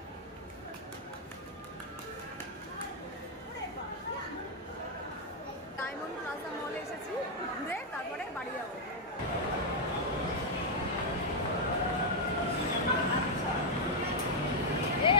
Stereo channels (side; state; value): both; normal; correlation -0.01